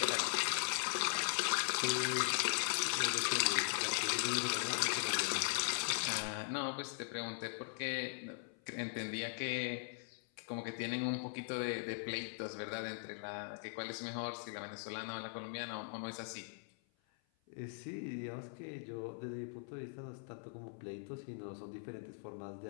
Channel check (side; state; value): right; silent; 51 dB below the other